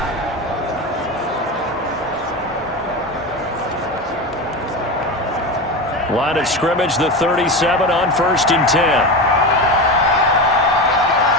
Line of scrimmage, the 37 on 1st and 10.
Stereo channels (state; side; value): normal; both; correlation 0.22